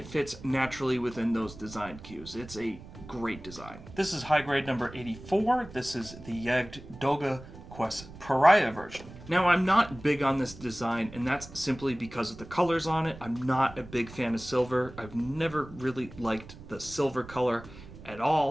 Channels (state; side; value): noise; right; rumble, 16 dB below the sound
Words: fits naturally within those design cues. It's a great design. This is high grade number 84. This is the Yagdoga Quest Pariah version. Now, I'm not big on this design, and that's simply because of the colors on it. I'm not a big fan of silver. I've never really liked the silver color at